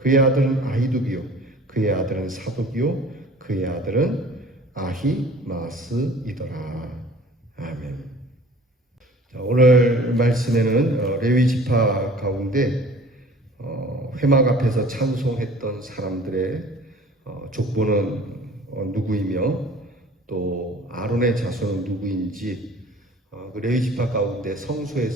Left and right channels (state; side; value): normal; both; correlation 0.47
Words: 그의 아들은 아히두비요 그의 아들은 사독이요 그의 아들은 아히마스이더라. 아멘. 자, 오늘 말씀에는 레위 지파 가운데 회막 앞에서 찬송했던 사람들의 족보는 누구이며 또 아론의 자손은 누구인지 그 레위 지파 가운데